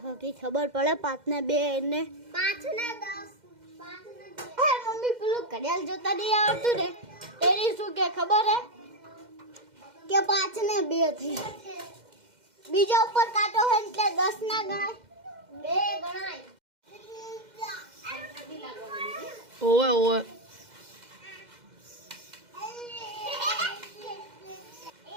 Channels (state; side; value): late; left; 2.1 ms